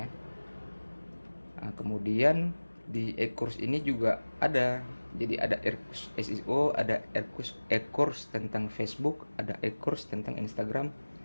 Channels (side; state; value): both; inverted; correlation -1.00